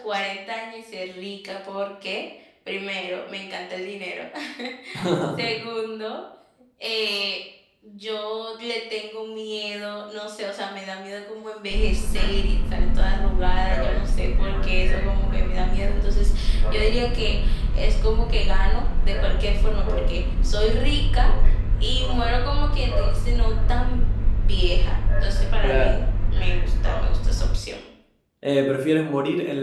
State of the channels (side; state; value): both; identical; correlation 1.00